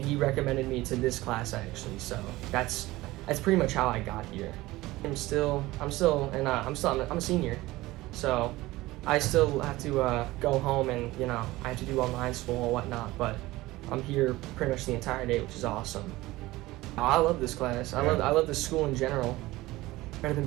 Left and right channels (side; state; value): left; quieter; 18.7 dB